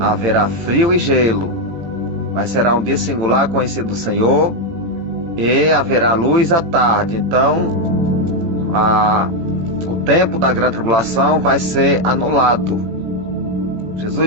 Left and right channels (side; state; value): left; late; 18 ms